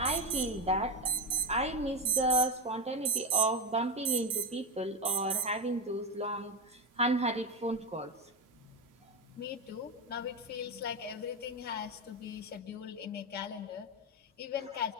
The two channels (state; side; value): normal; both; correlation 0.15